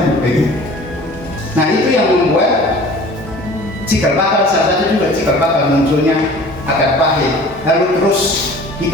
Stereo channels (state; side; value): normal; both; correlation 0.45